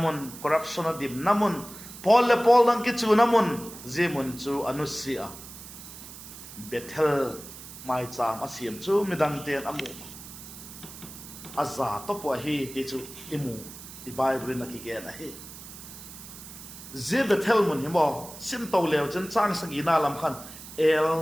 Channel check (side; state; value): right; noise; hiss, 14 dB below the sound